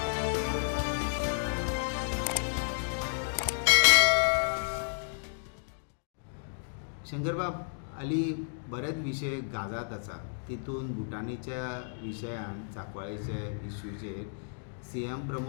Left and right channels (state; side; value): silent; right; digital silence